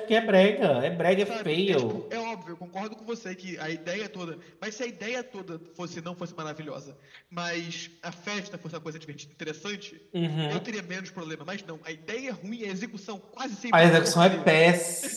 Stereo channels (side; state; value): both; identical; correlation 1.00